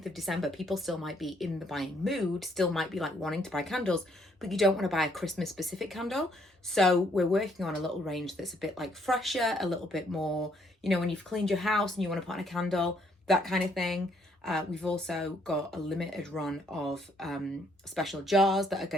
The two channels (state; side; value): normal; both; correlation 0.68